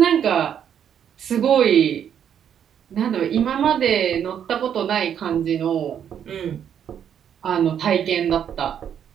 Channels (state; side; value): quieter; left; 8.8 dB